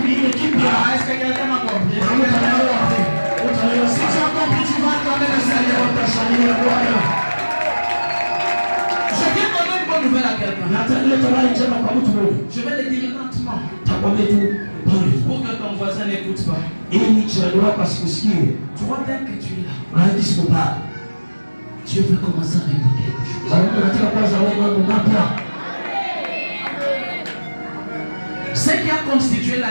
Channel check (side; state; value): both; inverted; correlation -1.00